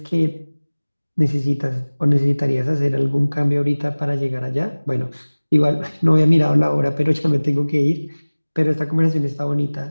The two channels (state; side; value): inverted; both; correlation -1.00